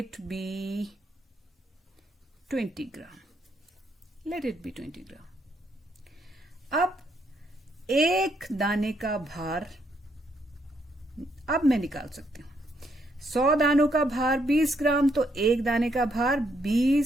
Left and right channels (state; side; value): normal; both; correlation 0.74